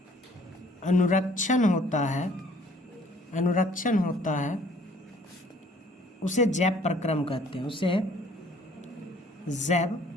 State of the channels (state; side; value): normal; both; correlation 0.57